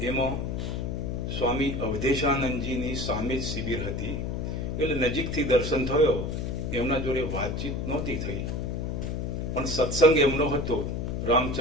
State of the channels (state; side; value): noise; left; hum, 2 dB below the sound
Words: એમાં સ્વામી અવધેશાનંદજીની સામે જ શિબિર હતી એટલે નજીકથી દર્શન થયો. એમના જોડે વાતચીત નહોતી થઈ, પણ સત્સંગ એમનો હતો